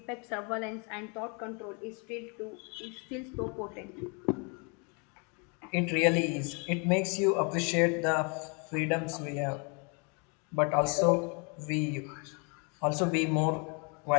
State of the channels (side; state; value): right; quieter; 34.9 dB